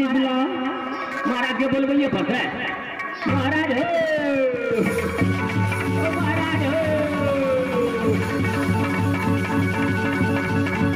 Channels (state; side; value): identical; both; correlation 1.00